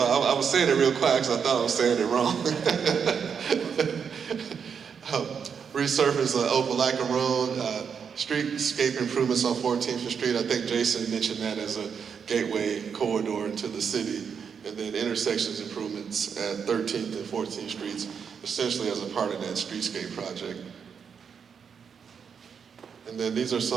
was saying it real quiet because I thought I was saying it wrong. Resurface Opelika Road, streetscape improvements on 14th Street. I think Jason mentioned that as a gateway corridor into the city. And then intersections improvements at 13th and 14th Streets, essentially as a part of that streetscape project. And then these are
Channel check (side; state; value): left; quieter; 6.8 dB